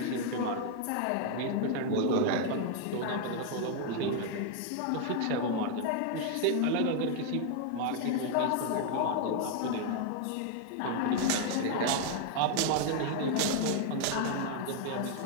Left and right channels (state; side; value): different; both; correlation 0.00